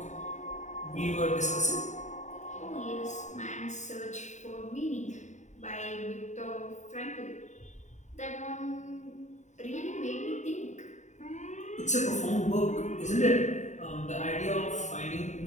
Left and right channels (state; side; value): late; right; 0.34 ms